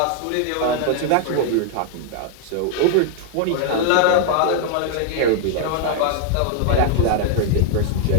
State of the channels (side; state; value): both; different; correlation 0.00